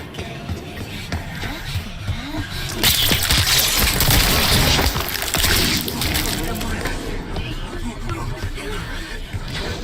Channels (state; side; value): identical; both; correlation 1.00